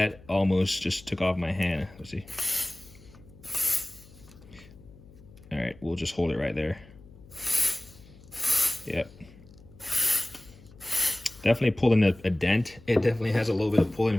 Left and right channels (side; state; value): left; noise; hum, 22 dB below the sound